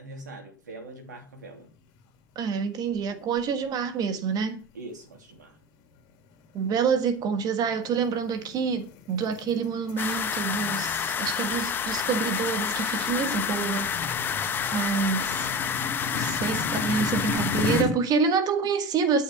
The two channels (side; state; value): both; normal; correlation 0.30